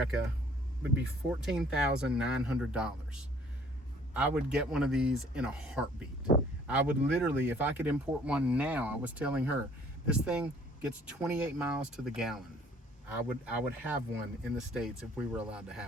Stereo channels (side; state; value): both; normal; correlation 0.57